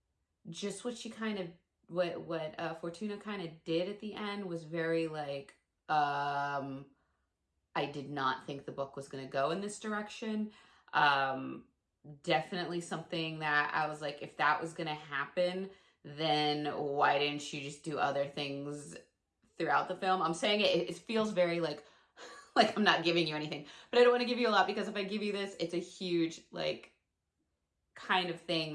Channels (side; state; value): both; identical; correlation 1.00